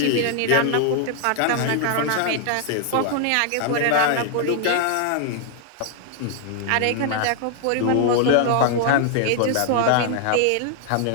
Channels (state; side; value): different; both; correlation 0.00